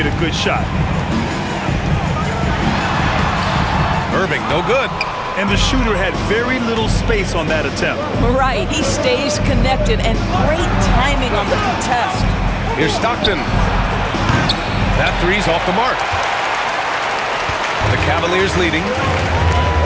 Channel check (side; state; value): both; identical; correlation 1.00